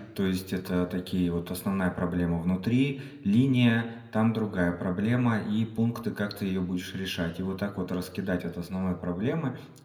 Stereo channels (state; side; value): identical; both; correlation 1.00